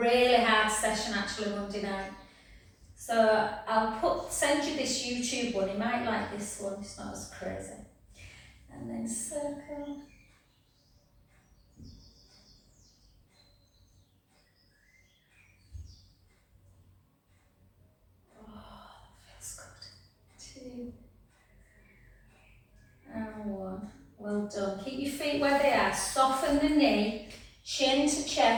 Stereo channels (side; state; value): both; identical; correlation 1.00